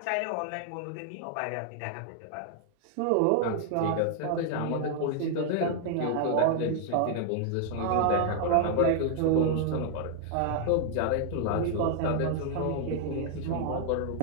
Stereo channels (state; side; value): different; both; correlation 0.00